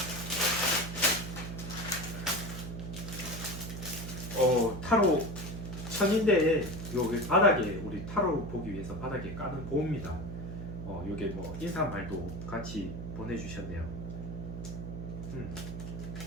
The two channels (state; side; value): noise; right; hum, 7 dB below the sound